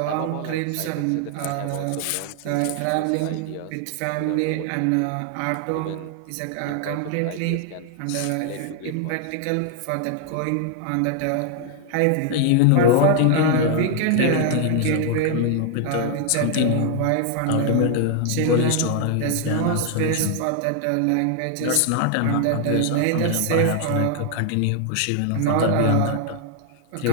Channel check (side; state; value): both; different; correlation 0.00